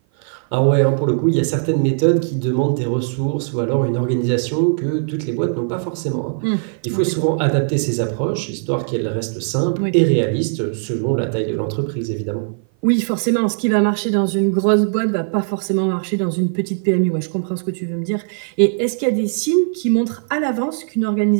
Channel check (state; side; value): silent; left; 56 dB below the other